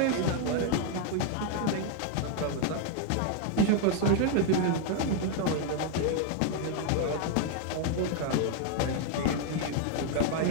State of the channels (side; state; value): both; different; correlation 0.00